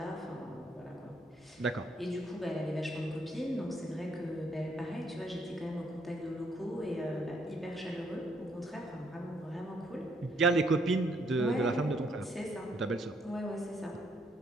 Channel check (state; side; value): normal; both; correlation 0.70